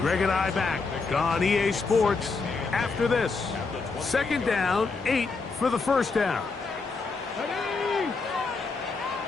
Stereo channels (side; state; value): right; quieter; 4.2 dB